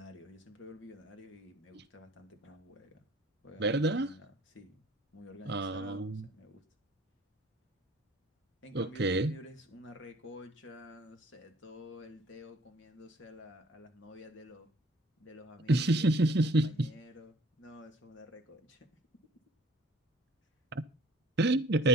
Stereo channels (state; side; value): normal; both; correlation 0.54